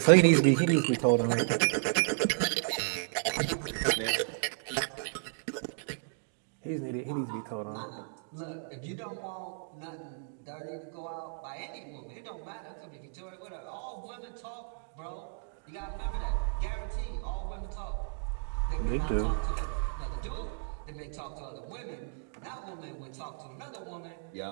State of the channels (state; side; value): silent; left; digital silence